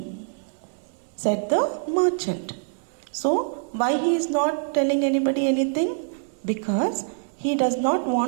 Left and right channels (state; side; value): silent; left; digital silence